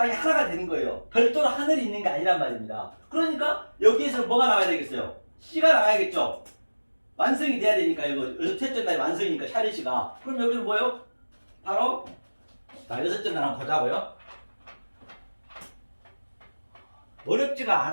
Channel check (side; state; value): both; inverted; correlation -1.00